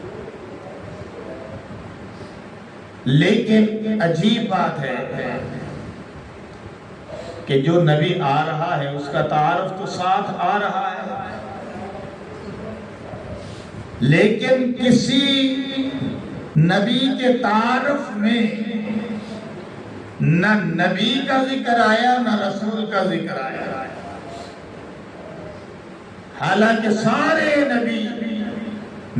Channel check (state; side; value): identical; both; correlation 1.00